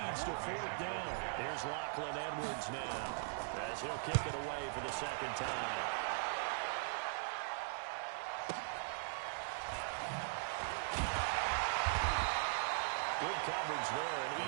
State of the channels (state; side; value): silent; left; digital silence